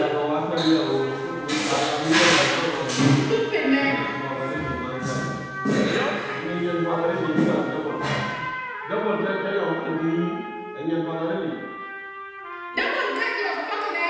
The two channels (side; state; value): both; identical; correlation 1.00